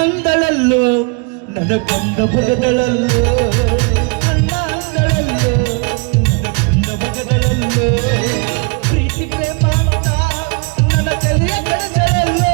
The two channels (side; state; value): left; quieter; 34.3 dB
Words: ನನ್ನ ಬಂದ ಭಗದಳಲ್ಲೋ ಪ್ರೀತಿ ಪ್ರೇಮ ಅಂತ ನನ್ನ ತಲೆಯ ಕಳೆದಳಲ್ಲೋ